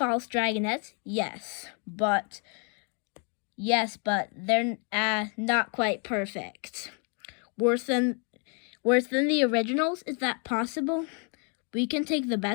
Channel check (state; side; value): quieter; right; 39.4 dB